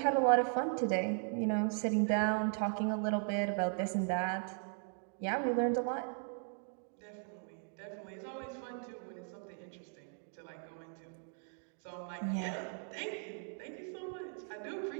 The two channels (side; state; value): left; silent; 53 dB below the other